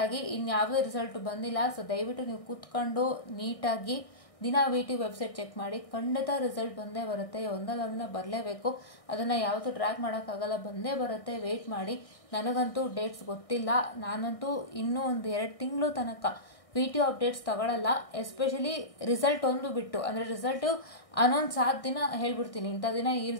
ಇನ್ಯಾವುದೇ ರಿಸಲ್ಟ್ ಬಂದಿಲ್ಲ. ಸೊ ದಯವಿಟ್ಟು ನೀವು ಕೂತ್ಕೊಂಡು ನೀಟಾಗಿ ದಿನ V2 ವೆಬ್ಸೈಟ್ ಚೆಕ್ ಮಾಡಿ, ಖಂಡಿತ ರಿಸಲ್ಟ್ ಬಂದೇ ಬರುತ್ತೆ, ಒಂದಲ್ಲ ಬರಲೇಬೇಕು, ಅದನ್ನು ಯಾವತ್ತೂ ಟ್ರ್ಯಾಕ್ ಮಾಡೋಕ್ಕಾಗಲ್ಲ, ಬಂದೇ ಬರುತ್ತೆ, ವೆಯ್ಟ್ ಮಾಡಿ. ನನಗಂತೂ ಡೇಟ್ಸ್ ಗೊತ್ತಿಲ್ಲ, ನಾನಂತೂ ಇನ್ನೂ ಒಂದು 2 ತಿಂಗಳು ತನಕ V2 ಅಪ್ಡೇಟ್ಸ್ ತಗೊಳ್ಳಲ್ಲ. ಎಸ್ಪೆಷಲಿ ರಿಸಲ್ಟ್ ಒಂದು ಬಿಟ್ಟು, ಅಂದರೆ ರಿಸಲ್ಟು ಅನೌನ್ಸ್ ಆದ ದಿನ ಹೇಳ್ಬಿಡ್ತೀನಿ, ಇಂಥ ದಿನ ಈ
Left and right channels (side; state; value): right; late; 1.6 ms